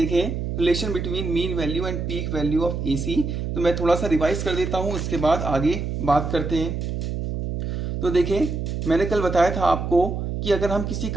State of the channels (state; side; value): noise; right; hum, 3 dB below the sound